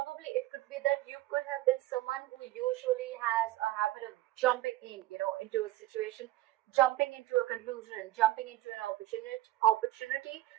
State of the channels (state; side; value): quieter; left; 16.1 dB